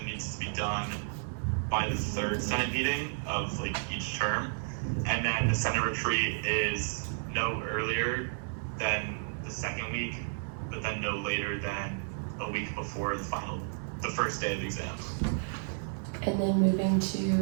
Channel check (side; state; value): left; silent; 56 dB below the other